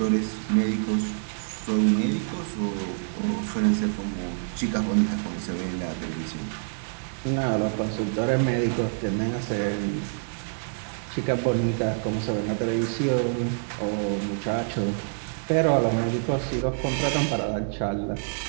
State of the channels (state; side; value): silent; left; digital silence